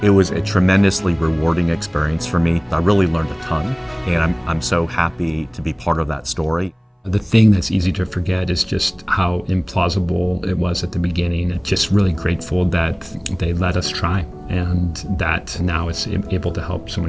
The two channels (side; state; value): both; identical; correlation 1.00